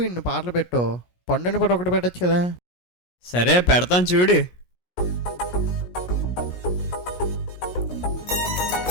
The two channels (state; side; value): late; right; 17 ms